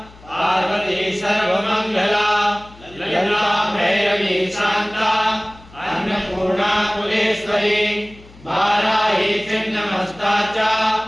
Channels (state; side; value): noise; left; hum, 23 dB below the sound